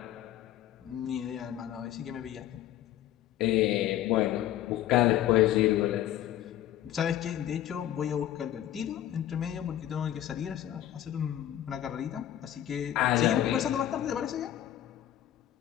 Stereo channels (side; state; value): right; quieter; 12.2 dB